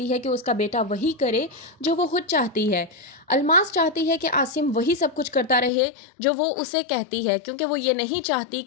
है कि उसका बेटा वही करे जो वो खुद चाहती है। अलमास चाहती है कि आसिम वही सब कुछ करता रहे जो वो उसे कहती है, क्योंकि वो ये नहीं चाहती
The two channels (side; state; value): right; drops out; at 5.7 s